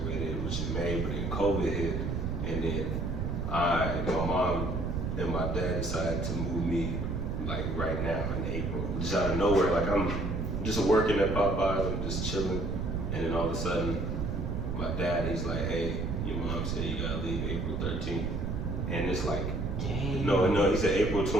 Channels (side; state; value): right; noise; rumble, 1 dB below the sound